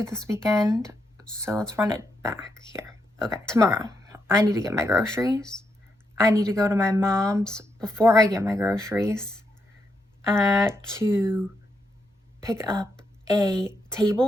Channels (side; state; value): both; normal; correlation 0.81